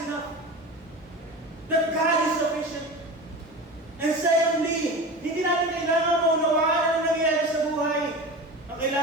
enough. That God is sufficient. And secondly, hindi natin kailangan maunawaan ang nangyayari sa buhay. Ang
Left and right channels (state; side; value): normal; both; correlation 0.30